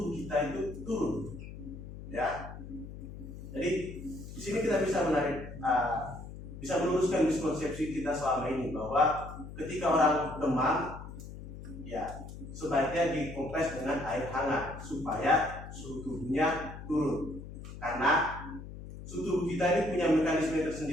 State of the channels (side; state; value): left; noise; hum, 12 dB below the sound